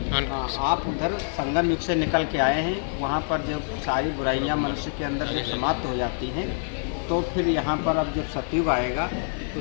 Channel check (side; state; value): right; silent; 61 dB below the other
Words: आप उधर संगम युग से निकल के आए हैं, वहाँ पर जब सारी बुराइयाँ मनुष्य के अंदर जब समाप्त हो जाती हैं, तो फिर यहाँ पर अब जब सतयुग आएगा तो